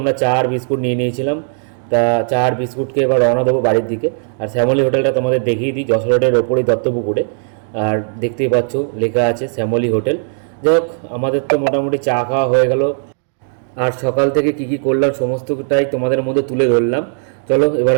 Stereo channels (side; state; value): left; silent; digital silence